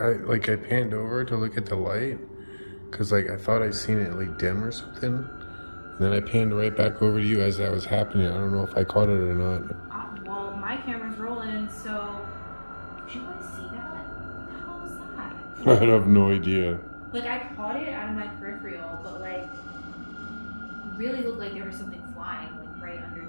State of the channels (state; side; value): inverted; both; correlation -1.00